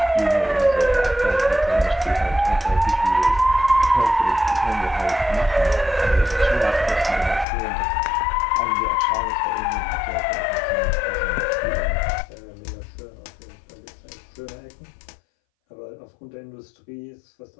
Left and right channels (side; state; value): right; drops out; at 7.5 s